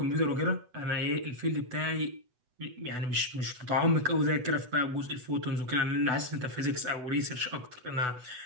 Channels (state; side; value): late; left; 8.0 ms